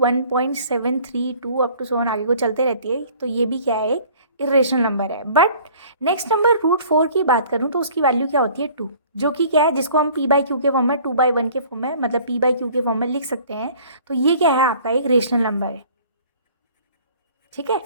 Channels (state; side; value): inverted; both; correlation -0.51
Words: up to so on आगे को चलते रहती है, तो ये भी क्या है, एक इरेशनल नंबर है। बट नेक्स्ट नंबर √4 की बात करूं तो उसकी वैल्यू क्या होती है, 2, जो कि क्या है, जिसको हम p/q के फॉर्म में 2/1 के फॉर्म में, मतलब p/q के फॉर्म में लिख सकते हैं। तो ये क्या है, आपका एक रेशनल नंबर है। ठीक है,